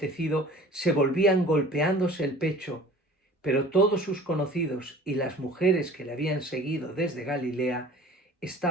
se volvían golpeándose el pecho. Pero todos sus conocidos y las mujeres que le habían seguido desde Galilea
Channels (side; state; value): both; normal; correlation 0.45